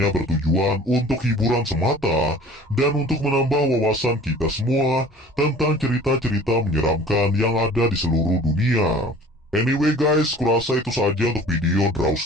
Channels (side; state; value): both; normal; correlation 0.47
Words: bertujuan untuk hiburan semata dan untuk menambah wawasan kita semua tentang cerita-cerita menyeramkan yang ada di seluruh dunia. Anyway guys, kurasa itu saja untuk video Draw